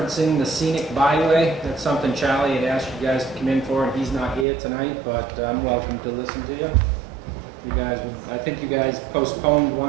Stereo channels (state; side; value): drops out; left; at 4.5 s